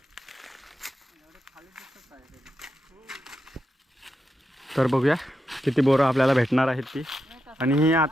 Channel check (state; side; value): normal; both; correlation 0.87